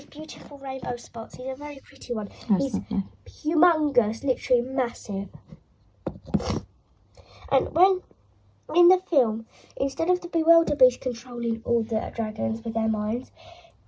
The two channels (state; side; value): identical; both; correlation 1.00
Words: beautiful rainbow spots. He's a very pretty one. He's humongous, literally massive. And in the film, instead of the Bewilder Beast controlling all the dragons with their minds,